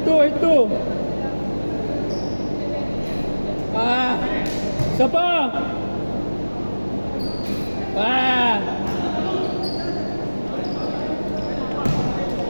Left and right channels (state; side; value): inverted; both; correlation -1.00